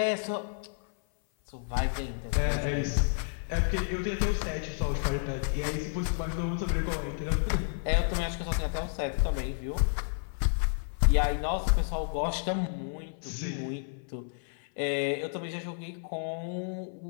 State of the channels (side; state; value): right; silent; 56 dB below the other